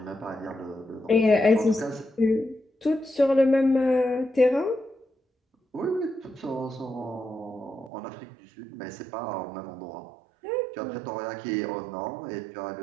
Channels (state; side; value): drops out; left; at 7.9 s